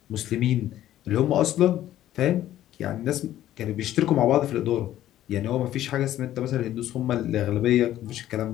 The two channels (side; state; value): right; quieter; 13.0 dB